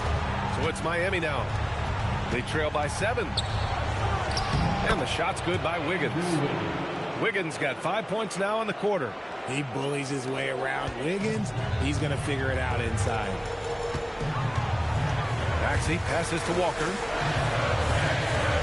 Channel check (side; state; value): both; identical; correlation 1.00